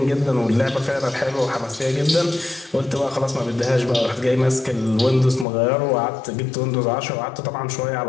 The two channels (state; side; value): drops out; right; at 5.5 s